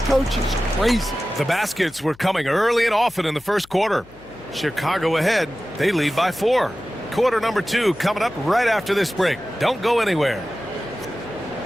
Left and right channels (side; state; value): left; noise; hum, 25 dB below the sound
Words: coaches crazy. The baskets were coming early and often in the first quarter. Chicago ahead. They lead by 4. Quarter number 2 coming up right after this break. Don't go anywhere.